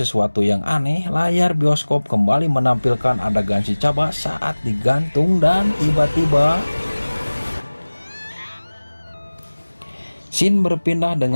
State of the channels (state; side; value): inverted; both; correlation -1.00